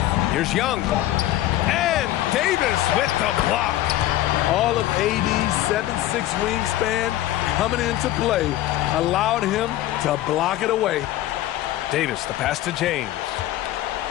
Here's Young. And Davis with the block. All of AD's 7'6" wingspan coming into play allowed him to block it away. Davis, the pass to James.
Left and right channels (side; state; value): right; quieter; 14.5 dB